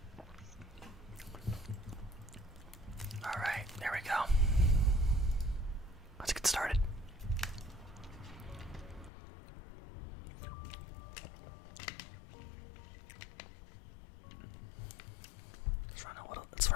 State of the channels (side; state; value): right; drops out; at 9.1 s